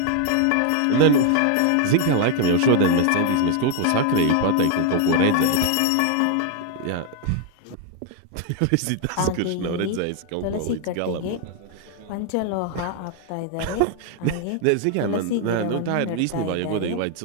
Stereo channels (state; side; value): different; both; correlation 0.00